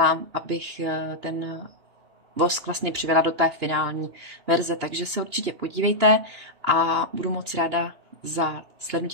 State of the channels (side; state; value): left; late; 2.9 ms